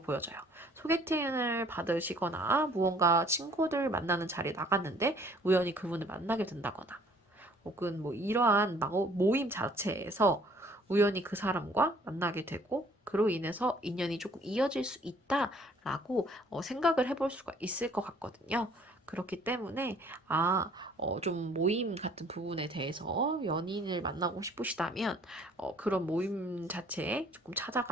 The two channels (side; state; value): both; normal; correlation 0.57